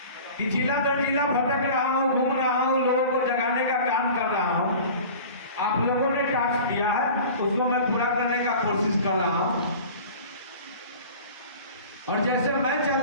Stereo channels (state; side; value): inverted; both; correlation -0.41